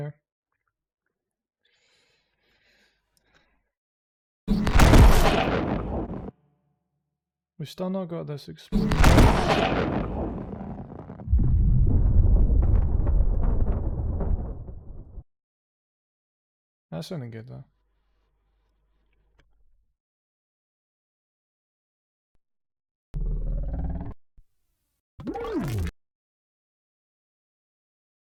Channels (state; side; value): identical; both; correlation 1.00